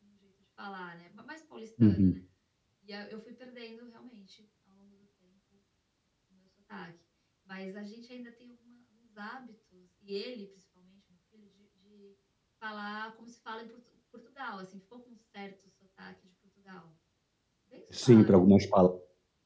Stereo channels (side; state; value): both; identical; correlation 1.00